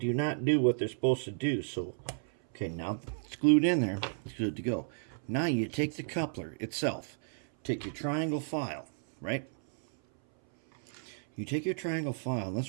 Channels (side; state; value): left; silent; 56 dB below the other